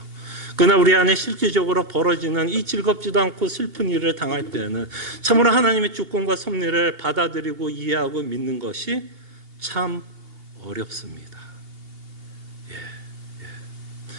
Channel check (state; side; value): late; left; 2.8 ms